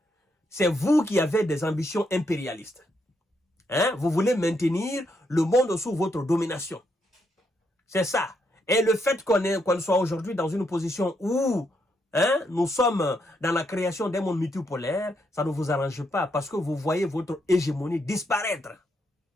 C'est vous qui avez des ambitions impérialistes. Vous voulez maintenir le monde sous votre domination. C'est ça. Et le fait qu'on soit aujourd'hui dans une position où nous sommes dans la création d'un monde multipolaire, ça ne vous arrange pas parce que vous voyez votre hégémonie disparaître.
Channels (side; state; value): both; normal; correlation 0.78